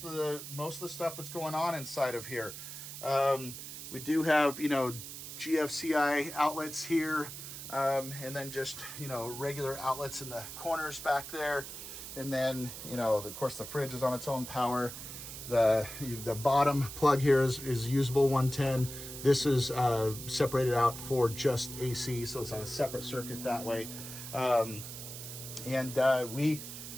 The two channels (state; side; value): noise; right; hiss, 10 dB below the sound